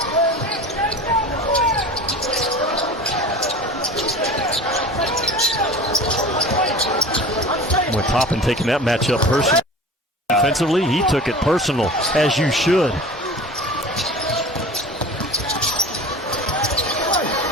With Toppin taking that matchup personally. Offensively, he took it personal, as you should.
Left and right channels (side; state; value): both; normal; correlation 0.37